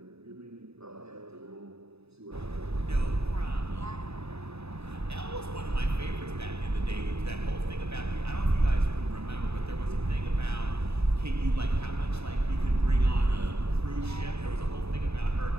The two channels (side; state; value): left; late; 0.79 ms